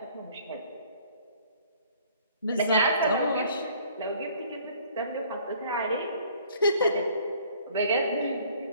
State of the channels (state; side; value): inverted; both; correlation -0.56